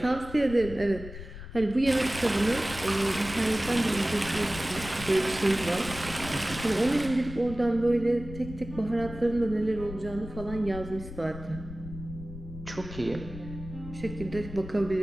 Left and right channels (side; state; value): left; noise; rumble, 12 dB below the sound